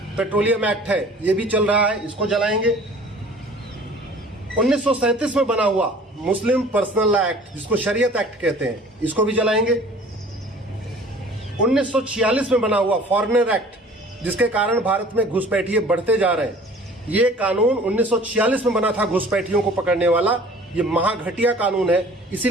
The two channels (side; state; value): both; normal; correlation 0.48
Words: पेट्रोलियम एक्ट है, ये भी चल रहा है, इसको जलाएंगे। 1937 में बना हुआ मुस्लिम पर्सनल लॉ एक्ट, जिसको शरीयत एक्ट कहते हैं, इसको भी जलाएंगे। 1946 में बना हुआ फॉरेनर एक्ट, जिसके कारण भारत में घुसपैठिए बढ़ते जा रहे हैं। ये कानून 1946 में बना था घुसपैठियों को पकड़ने वाला। ये महाघटिया कानून है,